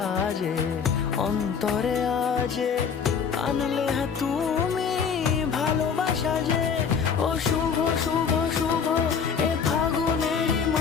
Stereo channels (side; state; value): right; quieter; 6.5 dB